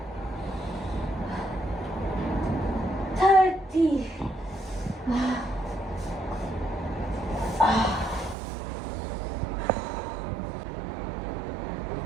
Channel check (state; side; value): drops out; left; at 8.3 s